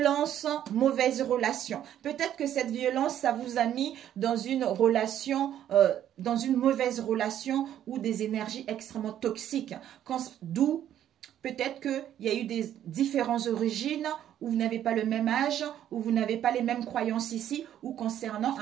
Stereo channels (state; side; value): quieter; left; 10.9 dB